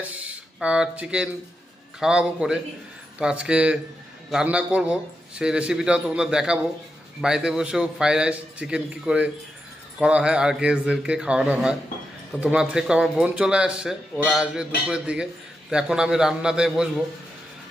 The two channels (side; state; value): both; normal; correlation 0.87